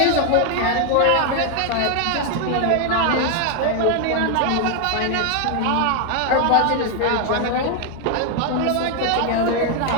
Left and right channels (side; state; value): both; different; correlation 0.00